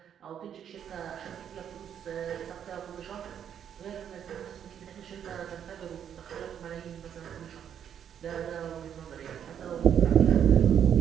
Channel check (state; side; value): quieter; left; 9.0 dB